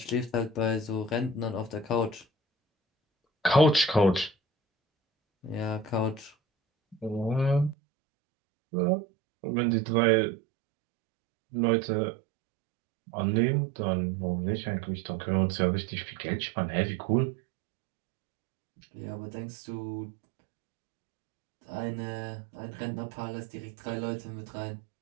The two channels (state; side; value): drops out; left; at 7.8 s